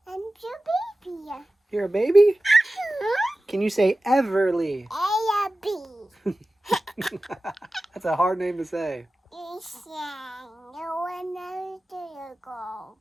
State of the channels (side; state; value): both; normal; correlation 0.95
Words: I'm your baby. You're a baby? Can you say Everly? A, B. That's a hard name to say. No one knows to go.